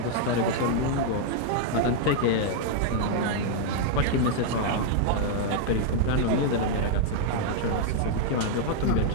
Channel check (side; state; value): both; different; correlation 0.00